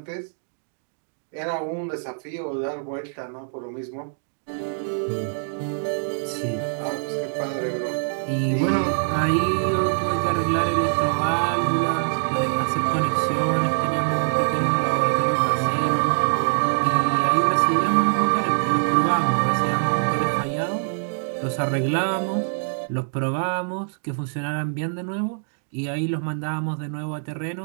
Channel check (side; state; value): left; silent; digital silence